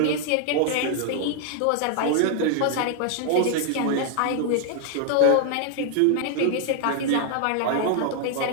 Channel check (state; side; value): different; both; correlation 0.00